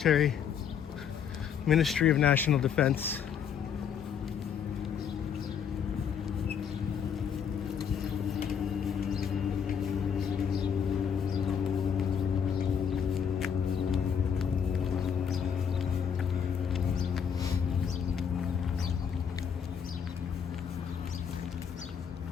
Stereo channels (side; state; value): right; quieter; 7.6 dB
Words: Ministry of National Defense.